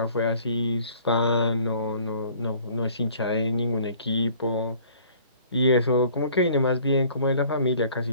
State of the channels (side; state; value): both; inverted; correlation -0.54